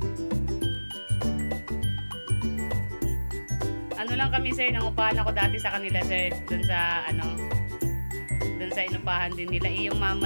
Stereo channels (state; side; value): inverted; both; correlation -1.00